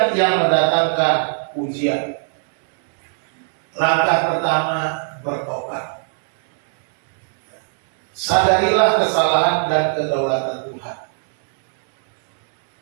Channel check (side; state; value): left; silent; digital silence